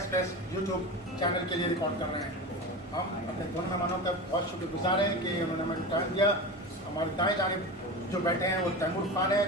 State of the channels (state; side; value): normal; both; correlation 0.27